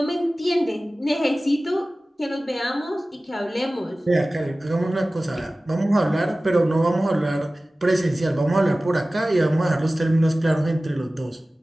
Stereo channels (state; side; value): normal; both; correlation 0.97